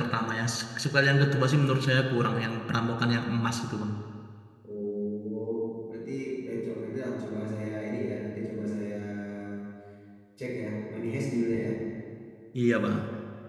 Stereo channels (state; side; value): identical; both; correlation 1.00